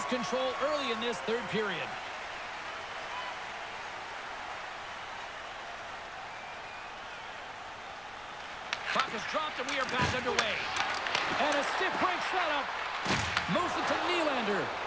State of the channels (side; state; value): left; noise; rumble, 23 dB below the sound